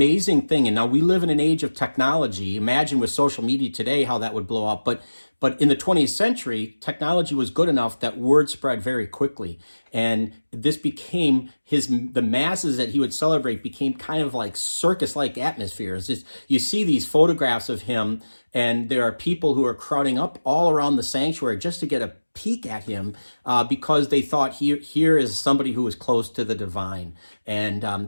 thing. And now we live in an age of technology. Imagine with social media today how that would blow up. But in the 20th century, technology was good enough that word spread very quickly. And this became the masses that he would celebrate became kind of like circus-like atmospheres. You see these photographs of him, and there are people who are crowding up all around the sanctuary just to get a peek at him because they thought here is somebody who was close to the divine, and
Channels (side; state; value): both; inverted; correlation -1.00